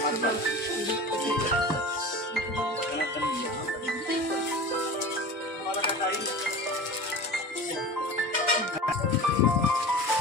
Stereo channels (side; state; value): both; normal; correlation 0.34